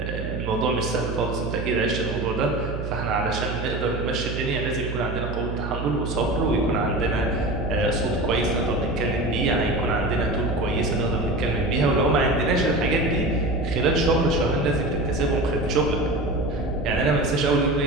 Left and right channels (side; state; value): right; noise; hum, 6 dB below the sound